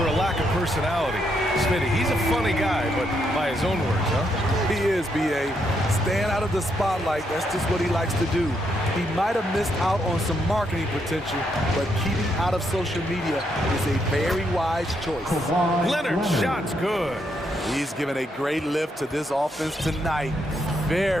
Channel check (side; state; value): both; normal; correlation 0.77